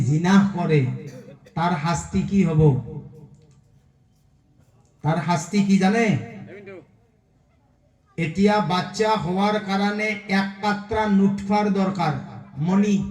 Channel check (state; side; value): identical; both; correlation 1.00